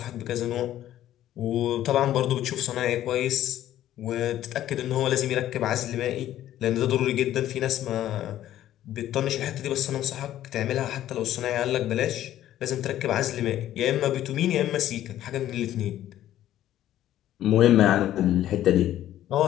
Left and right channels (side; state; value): right; quieter; 12.7 dB